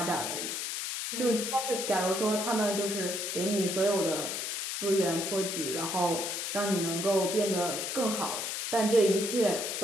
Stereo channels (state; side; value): noise; left; hiss, 3 dB below the sound